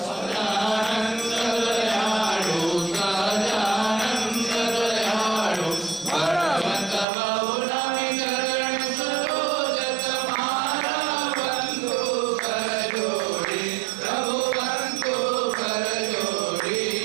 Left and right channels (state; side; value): drops out; left; at 7.1 s